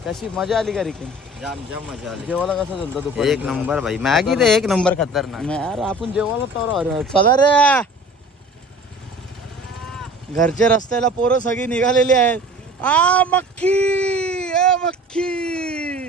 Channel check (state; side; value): normal; both; correlation 0.44